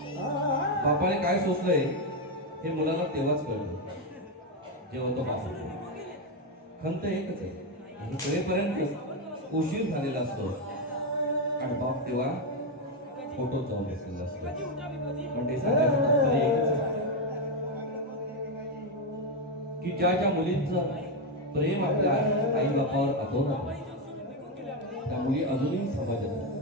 बापाने काय सोचलंय हे मुलाला तेव्हाच कळलं जेव्हा तो बाप होतो. खंत एकच आहे, हे कळेपर्यंत उशीर झालेला असतो आणि बाप तेव्हा फोटो जाऊन बसलेला असतो. पण ते सांगायचं तात्पर्य एकच आहे की ज्या मुलींचं प्रेम आपल्या आई बापावर अतोनात आहे, त्या मुली अजूनही समाजात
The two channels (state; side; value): normal; both; correlation 0.05